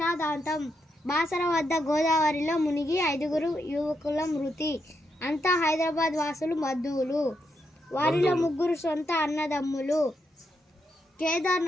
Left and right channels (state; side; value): normal; both; correlation 0.82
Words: Basara వద్ద గోదావరిలో మునిగి 5 యువకుల మృతి. అంతా హైదరాబాద్ వాసులు, బంధువులు. వారిలో 3 సొంత అన్నదమ్ములు.